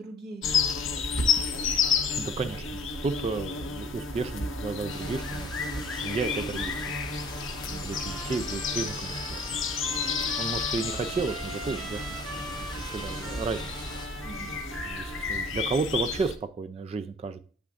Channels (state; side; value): normal; both; correlation 0.50